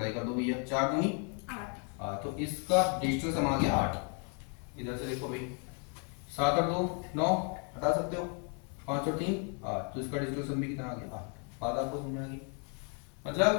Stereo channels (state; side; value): quieter; right; 39.7 dB